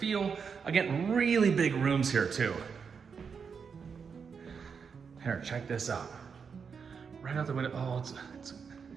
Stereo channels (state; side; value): quieter; left; 6.1 dB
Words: Again, really big rooms here too. Here, check this out. Right out the window, oh,